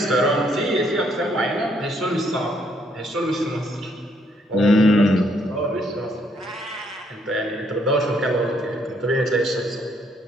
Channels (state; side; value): normal; both; correlation 0.70